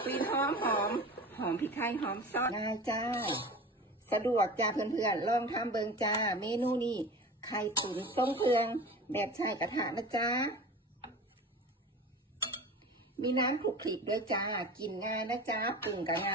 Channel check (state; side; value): normal; both; correlation 0.35